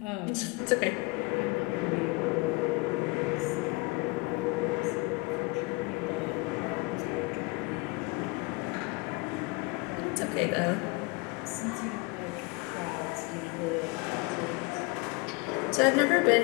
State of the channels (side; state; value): right; quieter; 27.4 dB